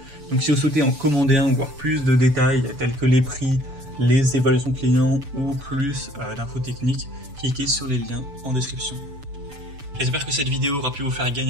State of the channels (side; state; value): left; late; 6.9 ms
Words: Donc si vous souhaitez en commander un ou voir plus de détails tels que les prix, les évaluations clients ou plus d'infos techniques, cliquez sur les liens en description. J'espère que cette vidéo aura pu vous faire